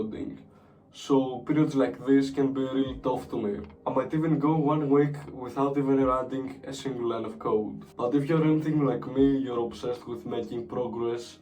So periods like this can be really tough to me. I might even go 1 week without even writing a single line of code. But if you're anything like me, you're obsessed with making progress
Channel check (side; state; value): both; identical; correlation 1.00